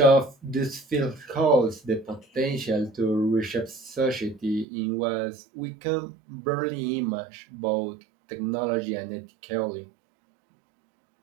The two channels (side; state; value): left; drops out; at 4.7 s